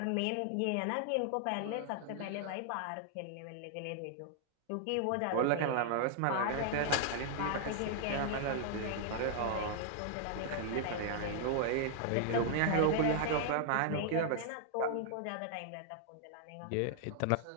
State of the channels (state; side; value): different; both; correlation 0.00